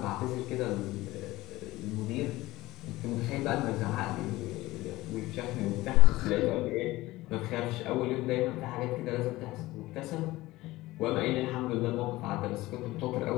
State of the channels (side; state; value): right; quieter; 18.5 dB